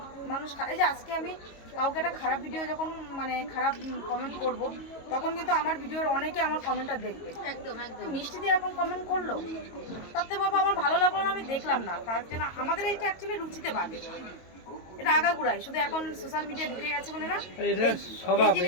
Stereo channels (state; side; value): late; right; 22 ms